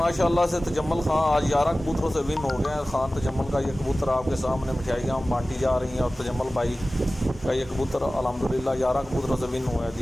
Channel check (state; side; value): normal; both; correlation 0.97